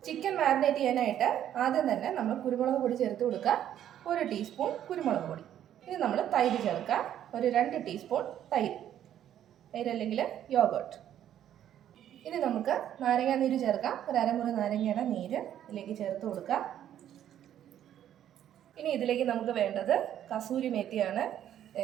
ചിക്കൻ മാരിനേറ്റ് ചെയ്യാനായിട്ട് ആദ്യം തന്നെ നമ്മൾ കുരുമുളക് പൊടി ചേർത്ത് കൊടുക്കുക. 1 ടീസ്പൂൺ കുരുമുളക് പൊടി. ഇനി നമ്മൾ തൈര് ചേർക്കുക. ഒരു 2 ടീസ്പൂൺ തൈര് അല്ലെങ്കിൽ യോഗർട്ട്. ഇനി നമുക്ക് നാരങ്ങ നീര് ചേർക്കാം. ഒരു 1/2 മുറി നാരങ്ങയുടെ നീര് ഇതിലേക്ക് ചേർത്ത് കൊടുക്കുക. ഇനി ഇതിലേക്ക് നമുക്ക് വേണ്ടത് കസൂരി മേത്തിയാണ്.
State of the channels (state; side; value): quieter; left; 10.8 dB